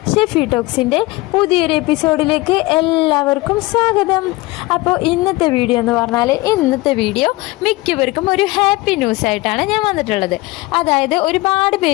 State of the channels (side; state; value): right; quieter; 21.1 dB